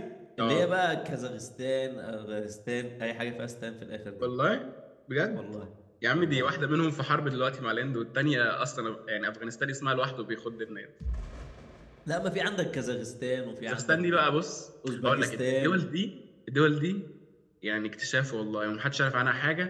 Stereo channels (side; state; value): both; identical; correlation 1.00